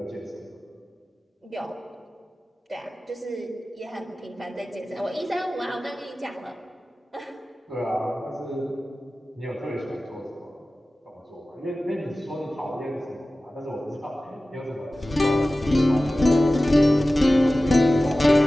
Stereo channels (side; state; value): both; normal; correlation 0.96